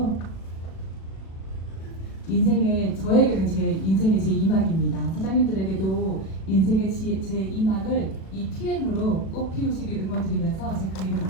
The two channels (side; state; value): right; late; 37 ms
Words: 저에게는 제 인생의 제2막입니다. 사장님들에게도 인생의 제2막을 이 PM으로 꼭 피우시길 응원드리면서 제 강의를